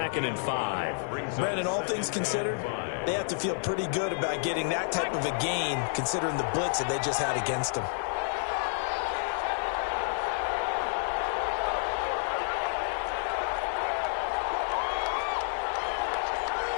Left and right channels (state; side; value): silent; right; 58 dB below the other